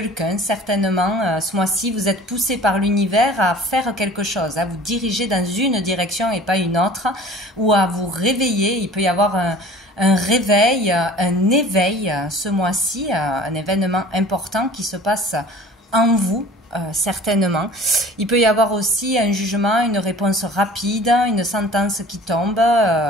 Certainement, ce mois-ci, vous êtes poussé par l'univers à faire quelque chose, à vous diriger dans une direction et pas une autre, ou à vous réveiller. Il peut y avoir un réveil, un éveil ce mois-ci, un événement important qui se passe en vous. Certainement. Il peut y avoir aussi un jugement, une réponse rapide, une sentence qui tombe,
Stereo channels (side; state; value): both; normal; correlation 0.45